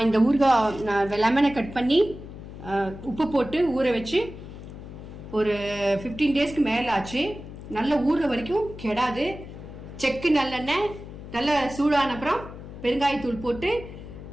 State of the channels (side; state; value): left; noise; hum, 13 dB below the sound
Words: இந்த ஊறுகாய் லெமனை கட் பண்ணி உப்பு போட்டு ஊற வச்சு ஒரு 15 டேஸ்க்கு மேலே ஆச்சு. நல்ல ஊறுற வரைக்கும் கெடாது. செக்கு நல்லெண்ணெய் நல்லா சூடான அப்புறம் பெருங்காயத்தூள் போட்டு